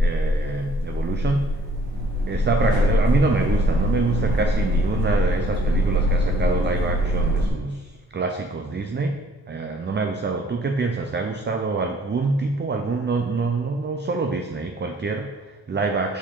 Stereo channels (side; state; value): both; normal; correlation 0.60